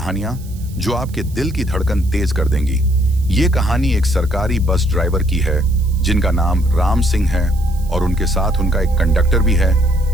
जो आपके दिल की धड़कन तेज कर देंगी। ये कहानी एक सरकारी बस ड्राइवर की है जिनका नाम राम सिंह है और उनके साथ उनका एक कंडक्टर भी है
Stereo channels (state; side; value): noise; right; hiss, 23 dB below the sound